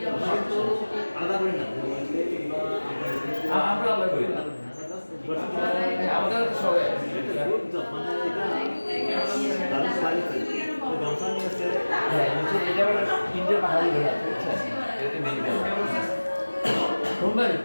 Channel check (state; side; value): inverted; both; correlation -1.00